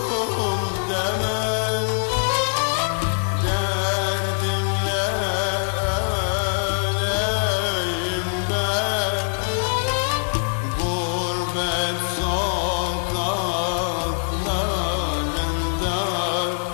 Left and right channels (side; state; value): right; silent; 63 dB below the other